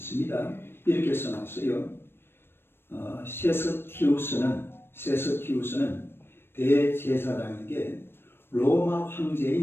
이렇게 써놨어요. 세스티우스는 대제사장에게 로마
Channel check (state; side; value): late; right; 0.11 ms